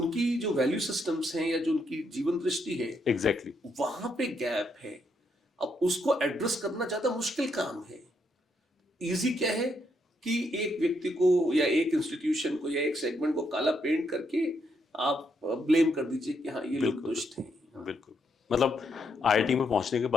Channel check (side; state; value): both; normal; correlation 0.76